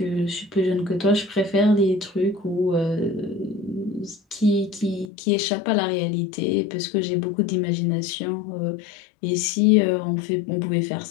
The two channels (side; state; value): right; drops out; at 5.1 s